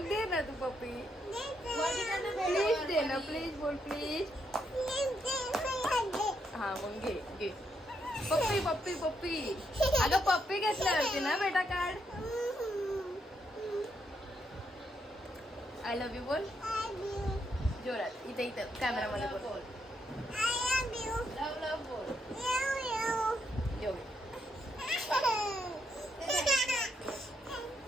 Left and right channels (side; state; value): both; normal; correlation 0.78